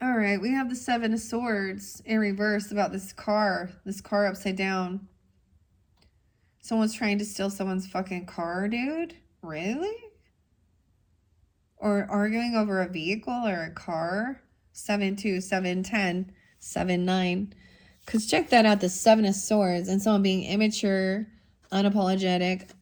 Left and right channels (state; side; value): identical; both; correlation 1.00